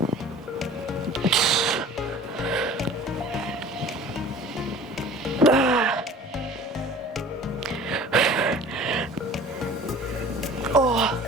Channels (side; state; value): both; normal; correlation 0.44